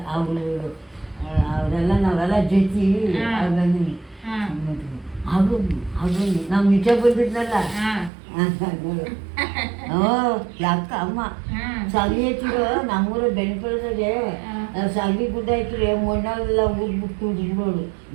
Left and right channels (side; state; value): left; drops out; at 8.1 s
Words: ಅವರೆಲ್ಲ ನಾವೆಲ್ಲ ಜೊತೆ ಅದು ಅದು ನಾವು ನಿಜ ಬಂದಿದ್ನಲ್ಲ ನೋಡು ಯಾಕ ಅಮ್ಮ ಸಾಗಿ ಹಚ್ಚಿರೋ ನಮ್ಮೂರ ಬೆಣ್ಪಳದಾಗೆ ಸಾಗಿ ಗುಡ್ಡ ಐತ್ರಿ ಮಣ್ಣೆಲ್ಲ ಉಗ್ಬಿಟ್ಟು ಬಿಡೋಳು